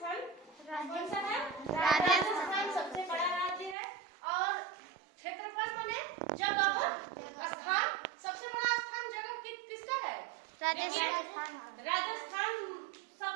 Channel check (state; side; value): drops out; left; at 3.8 s